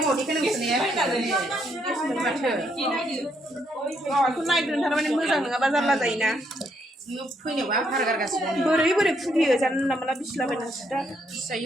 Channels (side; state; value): both; normal; correlation 0.74